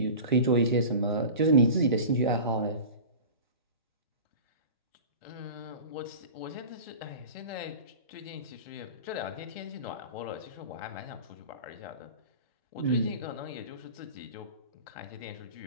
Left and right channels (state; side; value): inverted; both; correlation -0.35